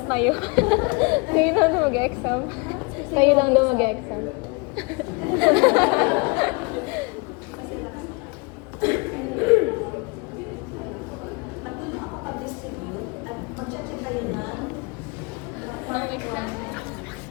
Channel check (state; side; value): quieter; right; 30.0 dB